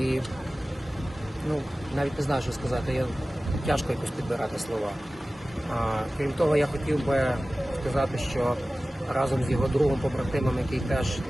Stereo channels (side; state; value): both; normal; correlation 0.96